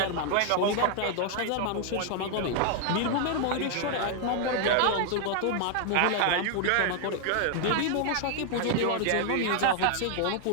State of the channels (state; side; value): different; both; correlation 0.00